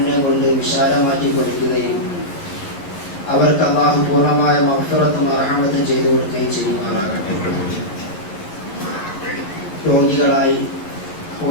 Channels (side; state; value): right; late; 11 ms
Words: കൊണ്ട് വിശാലമാറ്റി കൊടുക്കുകയും അവർക്ക് അല്ലാഹു പൂർണ്ണമായ മഗ്ഫിറത്തും റഹ്മത്തും ചെയ്തു കൊടുക്കുകയും ചെയ്യുമാറാകട്ടെ. രോഗികളായി